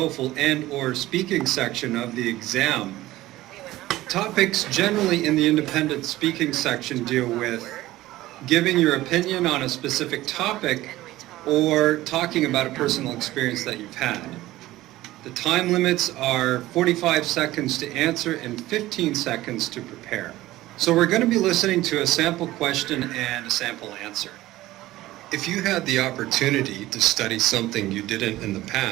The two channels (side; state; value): left; quieter; 16.6 dB